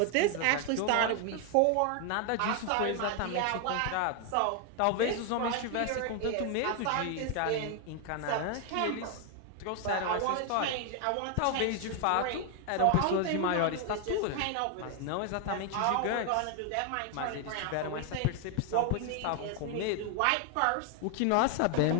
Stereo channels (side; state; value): both; different; correlation 0.00